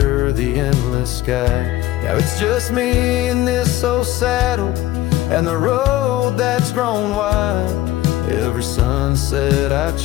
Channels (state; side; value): quieter; right; 15.5 dB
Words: the endless sky. Now it's just me in this old saddle and the road that's grown wide. Every sunset I